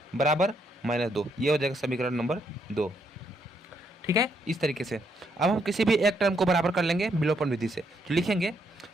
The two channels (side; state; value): both; normal; correlation 0.75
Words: बराबर -2, ये हो जाएगा समीकरण नंबर 2। ठीक है, इस तरीके से अब हम किसी भी एक टर्म को बराबर कर लेंगे विलोपन विधि से, तो लिखेंगे